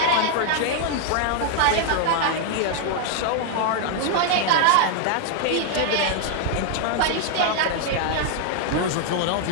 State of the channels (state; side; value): different; both; correlation 0.00